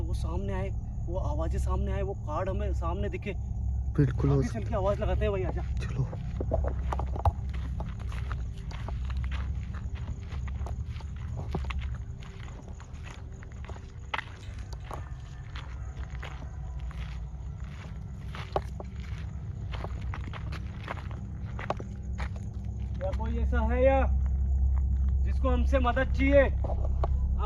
सामने आए, वो आवाजें सामने आए, वो कार्ड हमें सामने दिखे। बिल्कुल हो आगे चल के आवाज लगाते हैं भाई, आजा। चलो। क्या कोई ऐसा है या जिसको हमसे मदद चाहिए?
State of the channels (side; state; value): both; identical; correlation 1.00